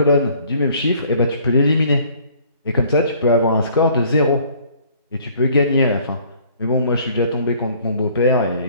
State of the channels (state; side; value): inverted; both; correlation -0.57